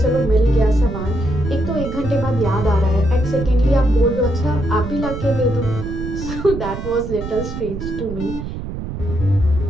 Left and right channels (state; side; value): noise; right; rumble, 7 dB below the sound